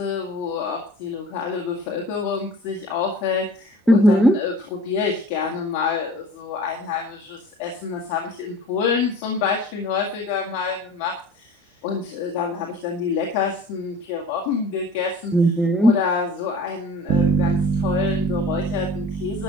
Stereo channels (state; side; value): normal; both; correlation 0.45